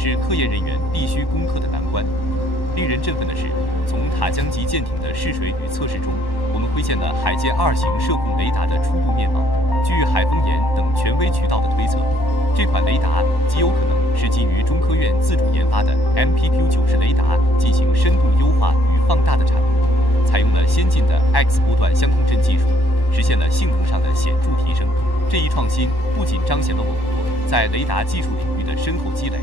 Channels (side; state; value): right; late; 1.1 ms